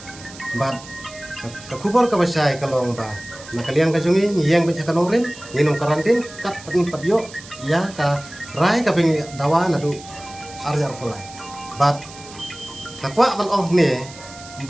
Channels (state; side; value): noise; right; hiss, 17 dB below the sound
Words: bat ka kubor ka basai kalong ba nakaliang ka jungi ngiyang baca kanong rin nginom karantin kat patin padyo ya ka rai ka ping dawa nadu arjar pulai. But nakwa man oh ne